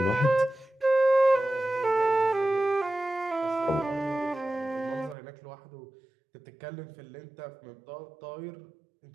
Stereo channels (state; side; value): drops out; left; at 5.2 s